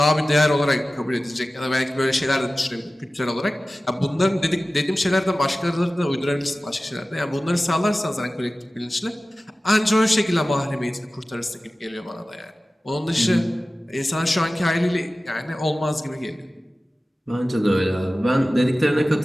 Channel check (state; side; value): normal; both; correlation 0.96